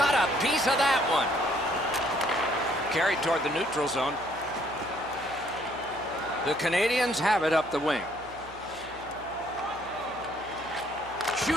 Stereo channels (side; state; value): right; noise; hum, 20 dB below the sound